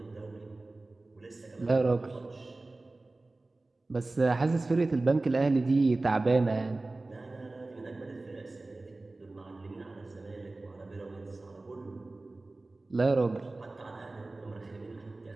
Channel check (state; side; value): quieter; left; 3.1 dB